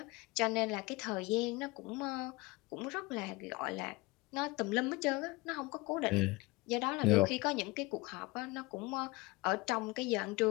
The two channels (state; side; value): quieter; right; 23.5 dB